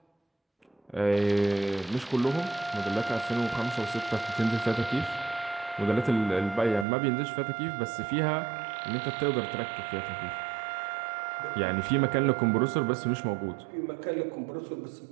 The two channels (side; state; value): left; drops out; at 6.9 s